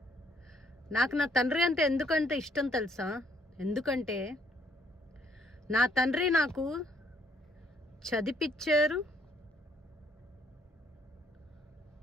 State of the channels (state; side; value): normal; both; correlation 0.66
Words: నాకు నా తండ్రి అంటే ఎందుకంటే ఇష్టం తెలుసా? ఎందుకంటే నా తండ్రి నాకు చదివిపించారు,